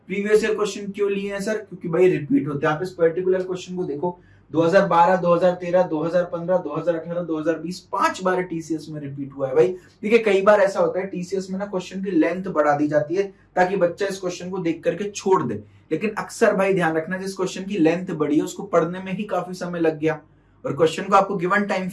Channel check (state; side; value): identical; both; correlation 1.00